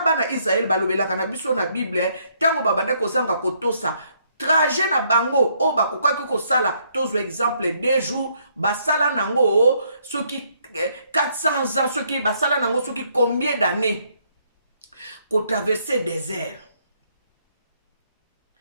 Israël balobelaka na biso na Bible tango babanda kozanga kotosa trajet na bango o bakokaki kosala tozwa exemple 2 jours basala nango soki 400 ans, ceux qui basala nango, ceux qui combien d'années qu'on traverser désert.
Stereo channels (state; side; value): inverted; both; correlation -0.70